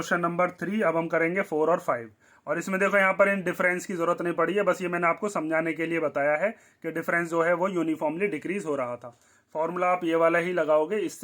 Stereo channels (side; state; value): both; identical; correlation 1.00